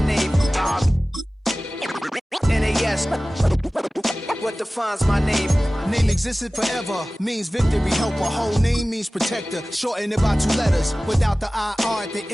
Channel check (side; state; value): both; normal; correlation 0.97